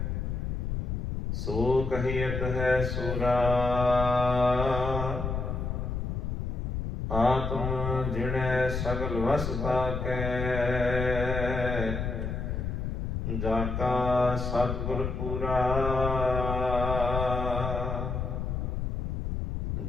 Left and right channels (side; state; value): left; noise; rumble, 2 dB below the sound